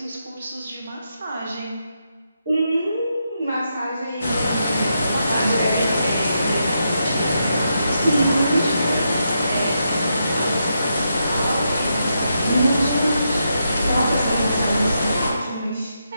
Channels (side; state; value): both; inverted; correlation -0.82